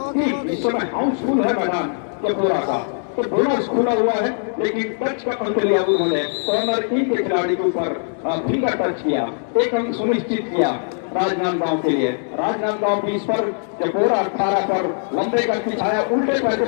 टीम इस समय हाउसफुल है मैदान चपोरा का। तो बोनस खुला हुआ है, लेकिन टच का अंक लिया उन्होंने कॉर्नर 3 के खिलाड़ी के ऊपर फिंगर टच किया, 1 अंक सुनिश्चित किया राजनांदगांव के लिए। राजनांदगांव 20 पर चपोरा 18 पर लंबे का छाया उल्टे पैर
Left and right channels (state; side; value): silent; right; digital silence